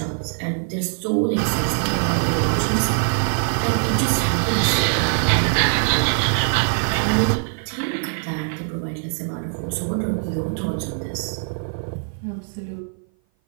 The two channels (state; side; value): silent; left; 57 dB below the other